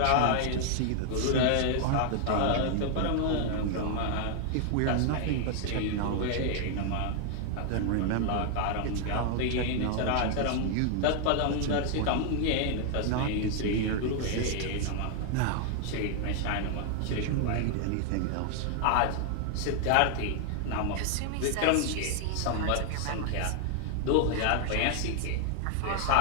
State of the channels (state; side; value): different; both; correlation 0.00